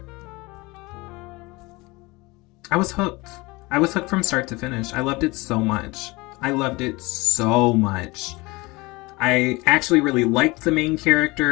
I was hooked. I was hooked from start to finish. I loved it so much. I actually really liked the main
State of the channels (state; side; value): quieter; right; 23.6 dB